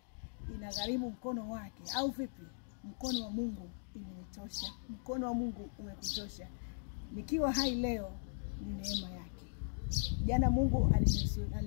Inagharimu mkono wake au vipi? Mkono wa Mungu imenitosha. Mkono wa Mungu umekutosha. Nikiwa hai leo ni neema yake. Jana Mungu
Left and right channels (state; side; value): silent; right; digital silence